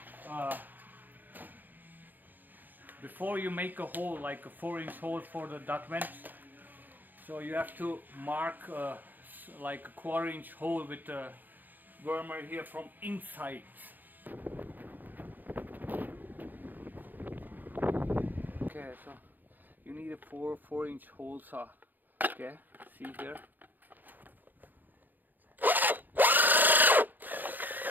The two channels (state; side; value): late; left; 0.087 ms